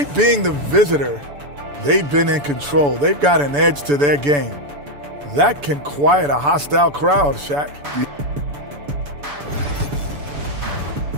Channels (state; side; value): late; left; 6.9 ms